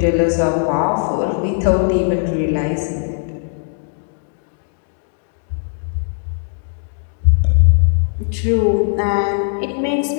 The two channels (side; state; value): right; silent; digital silence